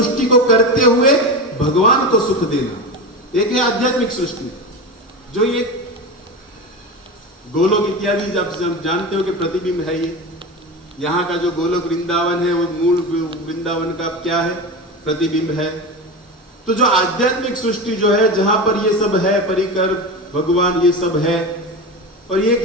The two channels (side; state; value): both; normal; correlation 0.24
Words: को करते हुए भगवान को सुख देना। एक है आध्यात्मिक सृष्टि, जो ये गोलोक इत्यादि जब जानते हो कि प्रतिबिंब है ये, यहाँ का जो गोलोक वृंदावन है वो मूल वृंदावन का क्या है? प्रतिबिंब है। तो जो आध्यात्मिक सृष्टि जो है, जहां पर ये सब है, परिकर भगवान ये सब है, और